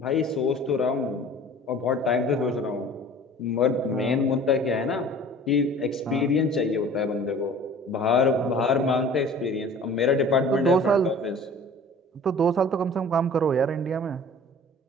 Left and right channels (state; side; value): normal; both; correlation 0.45